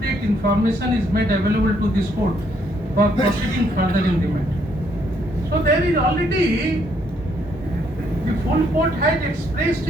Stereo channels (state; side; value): normal; both; correlation 0.70